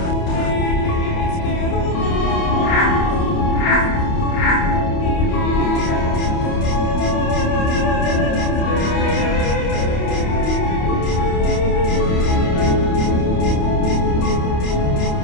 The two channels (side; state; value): right; late; 28 ms